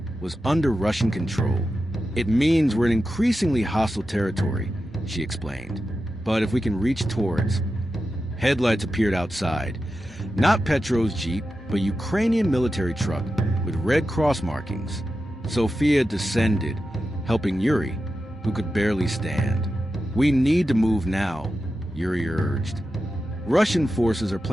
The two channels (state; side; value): normal; both; correlation 0.91